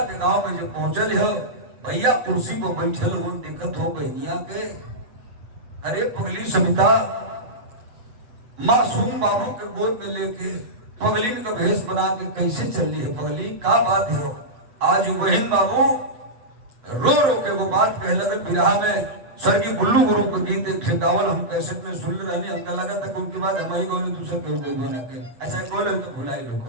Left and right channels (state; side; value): late; left; 8.2 ms